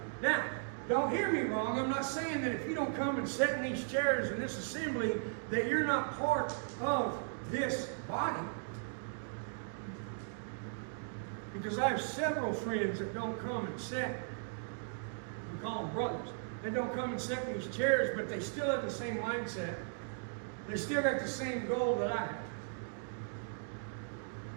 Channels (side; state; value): left; silent; digital silence